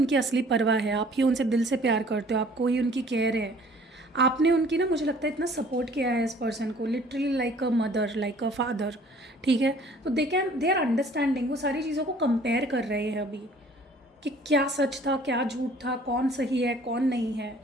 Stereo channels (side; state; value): both; normal; correlation 0.54